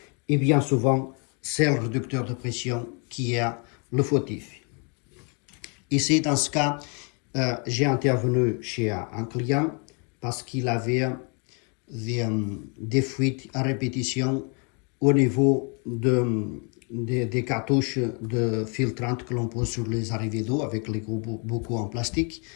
Et bien souvent, c'est le réducteur de pression qui est le fautif. Ici, dans ce cas, j'ai intervenu chez un client parce qu'il avait des fuites à répétition au niveau des cartouches de filtrante que l'on pose sur les arrivées d'eau avec les gros bocaux en plastique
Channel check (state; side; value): quieter; right; 36.4 dB